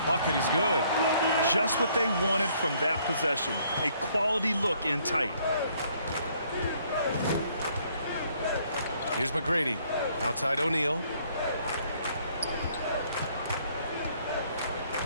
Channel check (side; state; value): both; inverted; correlation -0.65